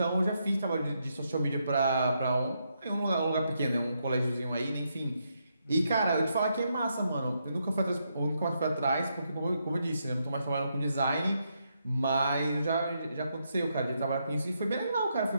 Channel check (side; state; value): both; inverted; correlation -0.79